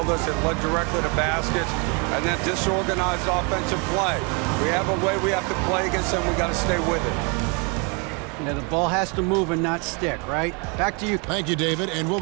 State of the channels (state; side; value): quieter; left; 32.7 dB